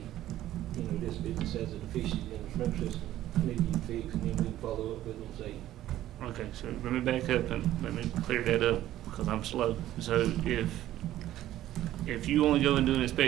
you know, this business has a deficiency in the sprinkler system, need to be fixed, and then we can follow up with them and say. Okay, so let me back up and let me clear that up, because I'm slow. So if you only go and do an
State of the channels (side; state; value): left; quieter; 13.6 dB